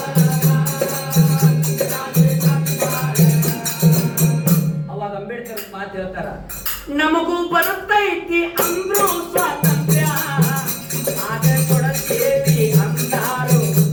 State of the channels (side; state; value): both; identical; correlation 1.00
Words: ಅವಾಗ ಅಂಬೇಡ್ಕರ್ ಮಾತು ಹೇಳ್ತಾರ ನಮಗೂ ಬರುತ್ತೈತಿ ಅಂದ್ರು ಸ್ವಾತಂತ್ರ್ಯ ಆಗ ಕೊಡತೇವಿ ಅಂದಾರು